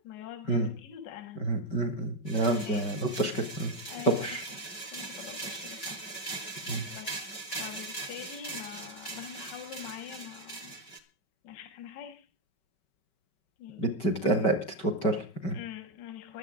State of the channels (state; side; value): late; right; 5.3 ms